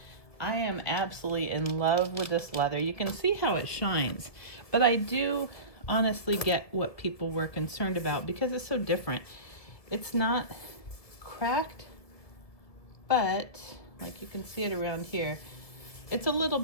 I am absolutely in love with this leather. You can see how it shines, but I do honestly get what people were concerned about because it's so different. It's not cracked, but like you can see it around here, it's a little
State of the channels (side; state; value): right; late; 1.5 ms